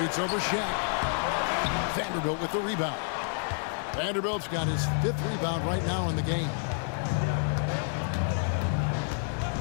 over Shaq. Vanderbilt with the rebound. Vanderbilt's got his 5th rebound right now in the game.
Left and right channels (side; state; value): right; silent; 58 dB below the other